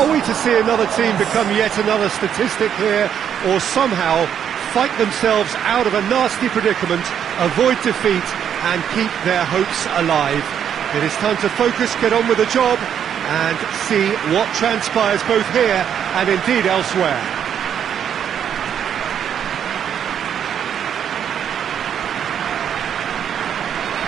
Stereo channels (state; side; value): quieter; left; 8.8 dB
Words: we to see another team become yet another statistic here, or somehow fight themselves out of a nasty predicament, avoid defeat and keep their hopes alive? It is time to focus, get on with the job, and see what transpires both here and indeed elsewhere.